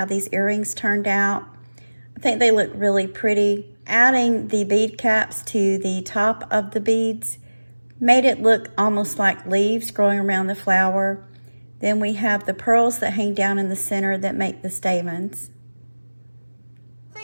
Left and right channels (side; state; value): both; inverted; correlation -1.00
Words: these earrings turned out. I think they look really pretty. Adding the bead caps to the top of the beads made it look almost like leaves growing around the flower. Then we have the pearls that hang down in the center that make the stamens. I